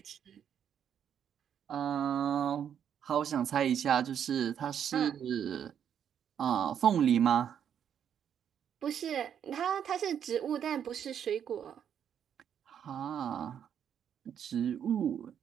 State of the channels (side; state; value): left; quieter; 8.7 dB